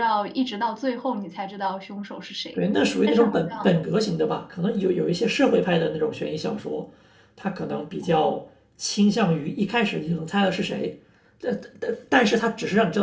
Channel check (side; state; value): both; identical; correlation 1.00